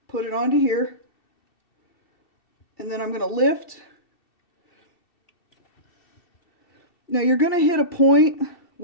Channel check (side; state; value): right; late; 2.7 ms